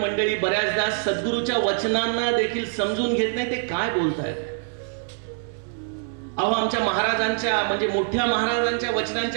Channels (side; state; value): left; silent; digital silence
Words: बऱ्याचदा सद्गुरूच्या वचनांना देखील समजून घेत नाही ते काय बोलतायत. अहो, आमच्या महाराजांच्या म्हणजे मोठ्या महाराजांच्या